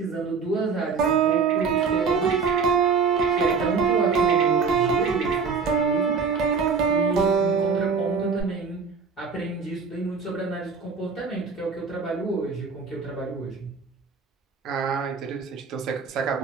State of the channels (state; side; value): quieter; left; 5.4 dB